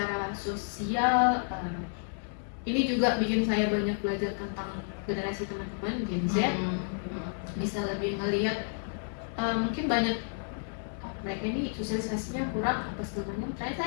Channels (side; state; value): right; silent; 57 dB below the other